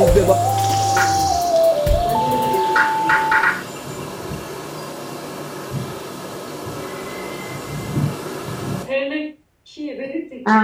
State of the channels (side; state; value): both; identical; correlation 1.00